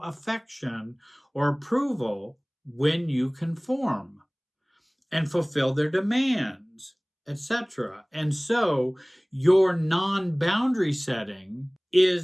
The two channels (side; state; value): both; identical; correlation 1.00